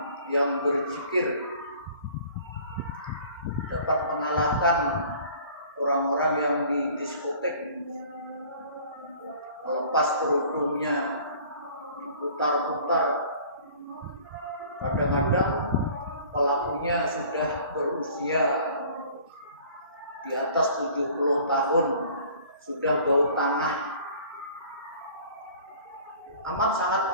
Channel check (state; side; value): inverted; both; correlation -0.49